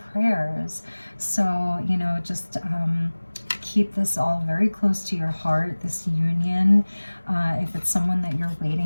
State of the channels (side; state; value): both; inverted; correlation -1.00